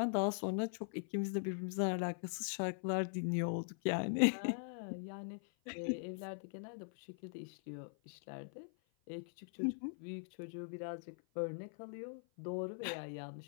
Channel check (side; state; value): right; silent; 50 dB below the other